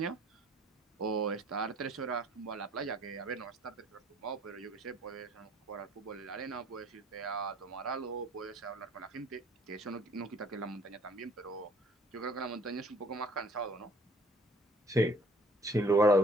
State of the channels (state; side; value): normal; both; correlation 0.56